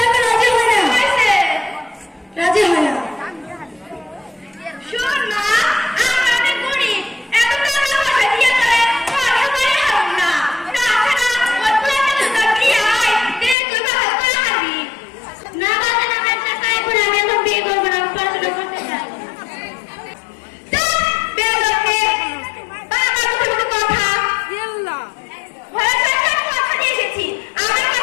রাজি হয় না, রাজি হয় না। শোন মা, আমরা অনেক গরিব, এত টাকা পয়সা দিয়ে করে পড়াশোনা করে হব না। তাছাড়া ওই পোলাটাকে তো বিয়ে হয়, তুই ভালো করে হারবি না। বাবা না, আমি চাই করে আমি এখন বিয়ে করবো না, আমি পড়াশোনা করতে চাই। বের করতে বাবা কথা কথা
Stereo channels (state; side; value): drops out; right; at 13.6 s